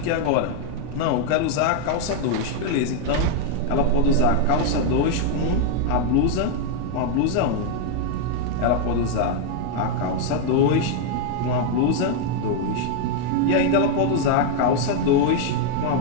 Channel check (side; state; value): both; different; correlation 0.00